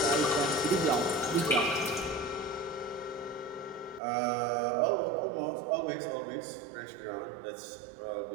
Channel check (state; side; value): drops out; left; at 4.0 s